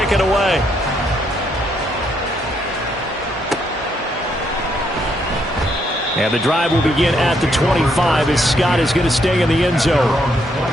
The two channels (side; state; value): both; normal; correlation 0.74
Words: it away. And the drive will begin at the 25 as Scott is going to stay in the end zone.